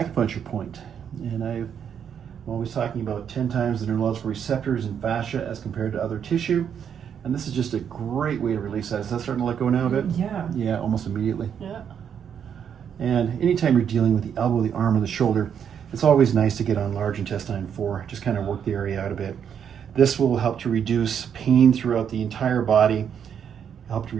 point. And I'm always talking about 10 times the neurological receptors in fascia as compared to other tissue. And this is just a great way to release that. Is that starting to let go now a bit? Yeah. Yeah, almost immediately. Yeah. And anytime you're dealing with the elbow, the arm, or the shoulder, it's always nice to get on large intestine 4, just kind of work the area out a bit. This will help to reduce pain throughout the entire body, help to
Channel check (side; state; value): left; quieter; 8.1 dB